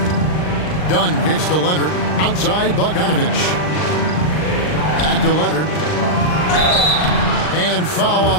Dunn kicks to Leonard. Outside, Bogdanovich. Back to Leonard. And foul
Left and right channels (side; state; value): right; late; 39 ms